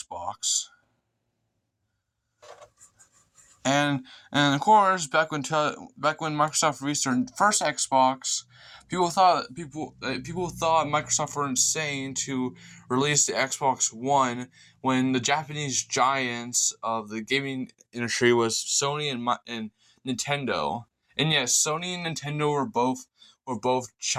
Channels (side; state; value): both; identical; correlation 1.00